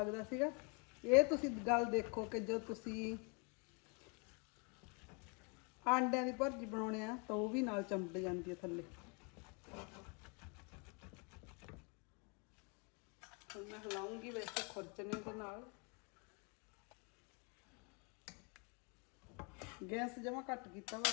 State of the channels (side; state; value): right; quieter; 34.1 dB